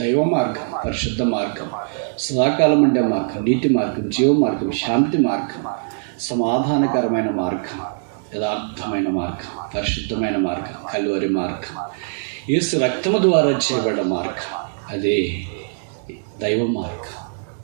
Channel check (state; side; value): silent; left; digital silence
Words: మార్గం, పరిశుద్ధ మార్గం, సదాకాలం ఉండే మార్గం, నీతి మార్గం, జీవ మార్గం, శాంతి మార్గం, సమాధానకరమైన మార్గం, యథార్థమైన మార్గం, పరిశుద్ధమైన మార్గం, కల్వరి మార్గం, యేసు రక్తము ద్వారా చేయబడ్డ మార్గం, అదే దైవ మార్గం.